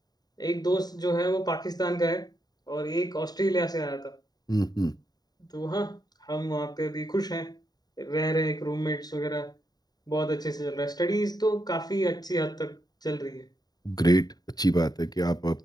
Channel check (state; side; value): late; right; 0.19 ms